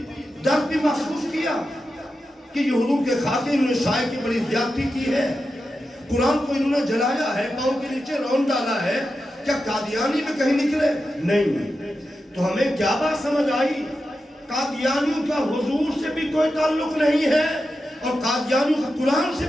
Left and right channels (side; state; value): both; normal; correlation 0.90